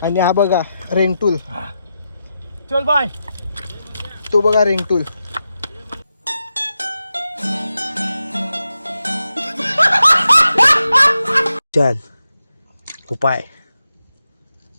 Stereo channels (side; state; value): both; inverted; correlation -0.89